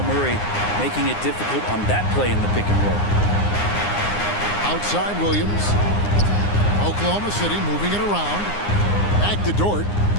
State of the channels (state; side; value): late; right; 9.7 ms